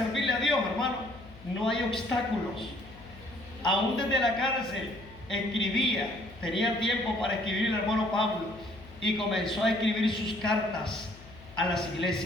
a Dios, hermano, no hay obstáculos. Aún desde la cárcel escribía, tenía tiempo para escribir el hermano Pablo, y comenzó a escribir sus cartas a las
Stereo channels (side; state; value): left; noise; hum, 20 dB below the sound